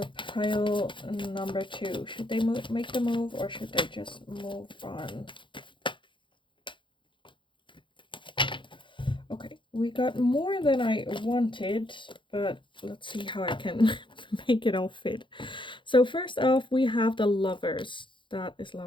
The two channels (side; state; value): right; late; 0.24 ms